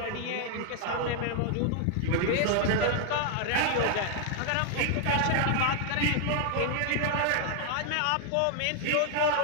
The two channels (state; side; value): different; both; correlation 0.00